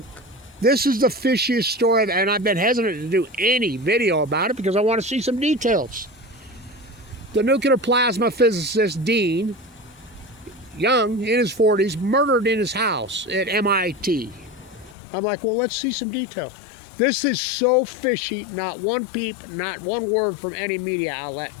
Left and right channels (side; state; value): right; drops out; at 15.0 s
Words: this is the fishiest story, and I've been hesitant to do any video about it because I want to see some details. The nuclear plasma physicist Dean, young, in his 40s, murdered in his house at MIT. I'm like, well, let's see some details. This is so fishy. Not one peep, not one word from any media outlet.